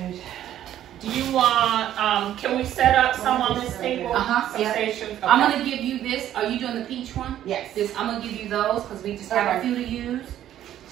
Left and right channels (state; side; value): quieter; left; 11.7 dB